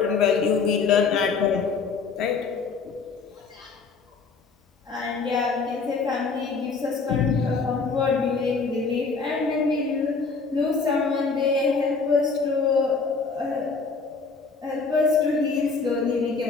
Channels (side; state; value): right; quieter; 4.7 dB